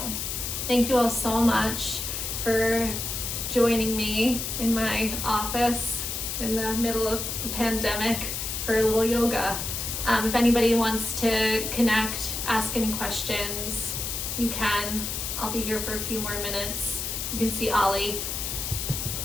Thank you all so much for joining me in my office in the middle of the pandemic for a little yoga. If anybody wants to connect, ask any questions, you can. I'll be here for a few more minutes. You can see Ollie.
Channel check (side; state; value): left; noise; hiss, 3 dB below the sound